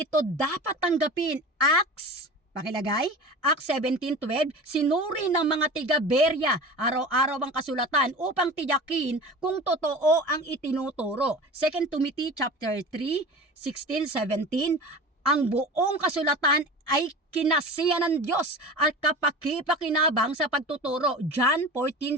dapat tanggapin. Acts 17:12, sinuri ng mga tiga-Berea araw-araw ang kasulatan upang tiyakin kung totoo ang itinuturo. 2 Timothy chapter 3:16-17, ang buong kasulatan ay kinasiya ng Diyos at kapakipakinabang sa pagtuturo. John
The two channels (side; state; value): both; normal; correlation 0.34